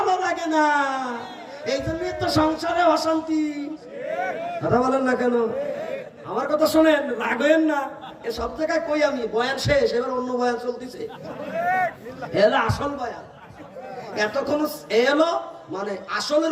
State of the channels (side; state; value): both; identical; correlation 1.00